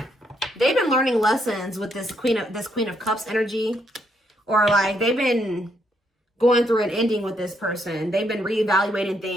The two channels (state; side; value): normal; both; correlation 0.75